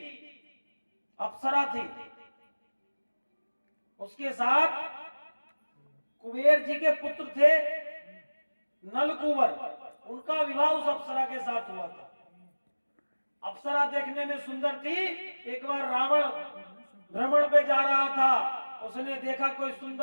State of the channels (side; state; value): both; inverted; correlation -1.00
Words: अप्सरा थी, उसके साथ कुबेर जी के पुत्र थे नलकुबर, उनका विवाह उस अप्सरा के साथ हुआ था। अप्सरा देखने में सुंदर थी। एक बार रावण भ्रमण पे जा रहा था, उसने देखा कोई